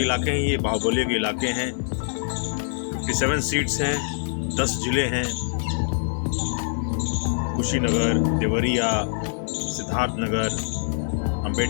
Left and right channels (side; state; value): right; silent; 62 dB below the other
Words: हैं, ये बाहुबली के इलाके हैं। 57 सीट्स हैं, 10 जिले हैं। कुशीनगर, देवरिया, सिद्धार्थनगर,